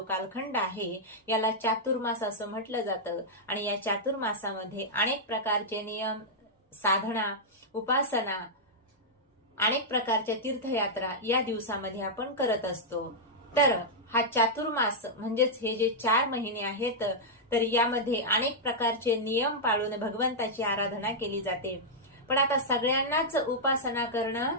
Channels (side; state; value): both; normal; correlation -0.07